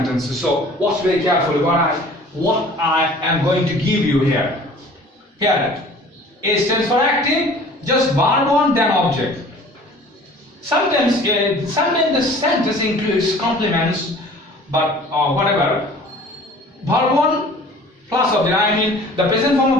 So watch very carefully what I am going to give you here. Here, A stands for active, just verb 1 then object. Sometimes the sentence includes complements, but whatever. Verb 1 plus object, I mean the present form of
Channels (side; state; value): both; normal; correlation 0.47